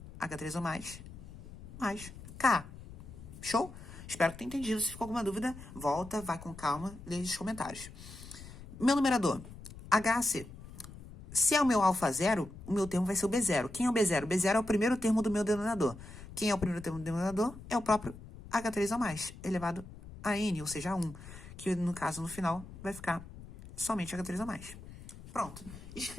H3 ou mais K. Show? Espero que tenha entendido. Se ficou alguma dúvida, volta, vai com calma, lê os comentários. Meu numerador, HAC. Se é o meu alfa 0, o meu termo vai ser o B0. Quem é o B0? O B0 é o primeiro termo do meu denominador. Quem é o primeiro termo do denominador? É o próprio H3 ou mais, elevado a N, ou seja, a 1. Que, no caso, no final, vai ficar somente H3 ou mais. Pronto.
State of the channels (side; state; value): left; noise; rumble, 15 dB below the sound